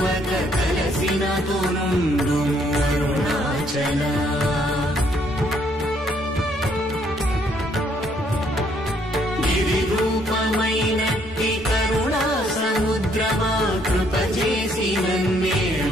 కలసినతో నుండు అరుణాచల గిరి రూపమైనట్టి కరుణా సముద్రమా కృప చేసి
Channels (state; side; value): normal; both; correlation 0.68